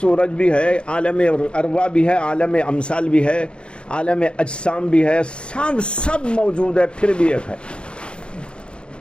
بھی ہے، عالم ارواح بھی ہے، عالم امثال بھی ہے، عالم اجسام بھی ہے، سب موجود ہے، پھر بھی ایک ہے۔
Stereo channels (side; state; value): right; late; 0.055 ms